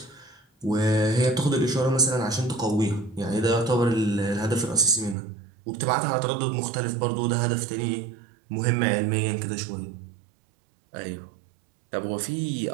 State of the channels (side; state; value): left; drops out; at 5.2 s